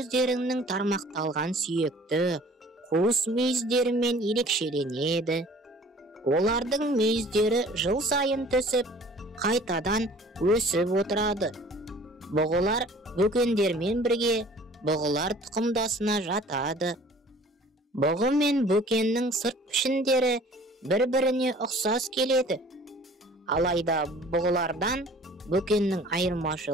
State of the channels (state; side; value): normal; both; correlation 0.50